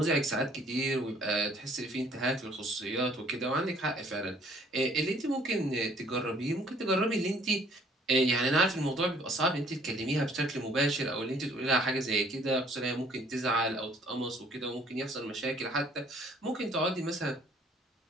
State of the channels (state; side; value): normal; both; correlation 0.59